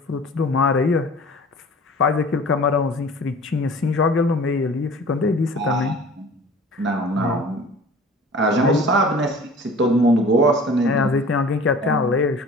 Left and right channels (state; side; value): normal; both; correlation 0.44